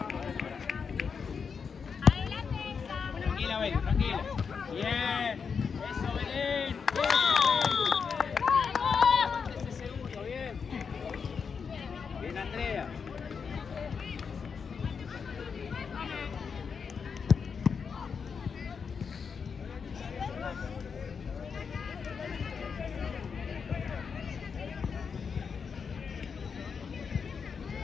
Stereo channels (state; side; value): quieter; right; 6.0 dB